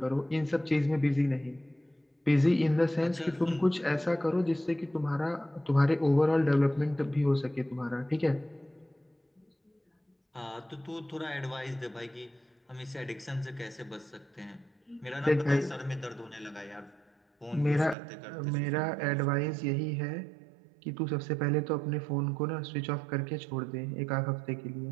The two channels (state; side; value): drops out; left; at 17.9 s